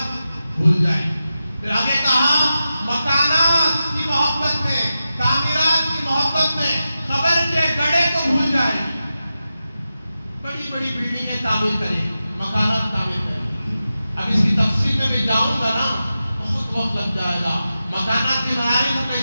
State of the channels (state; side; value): inverted; both; correlation -0.92